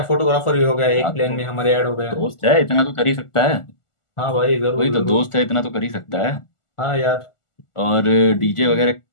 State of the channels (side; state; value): right; late; 1.4 ms